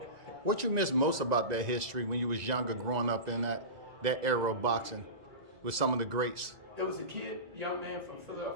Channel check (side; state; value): left; late; 1.9 ms